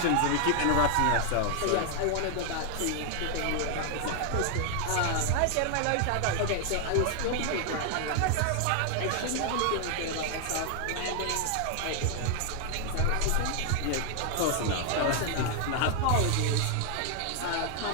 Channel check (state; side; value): different; both; correlation 0.00